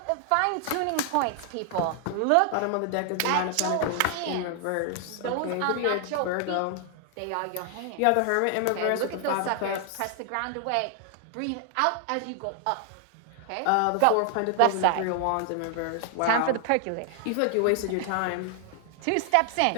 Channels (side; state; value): both; different; correlation 0.00